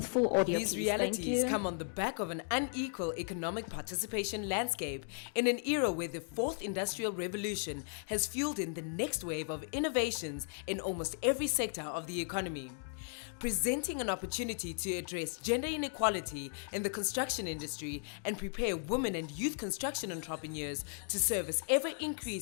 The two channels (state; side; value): silent; right; 54 dB below the other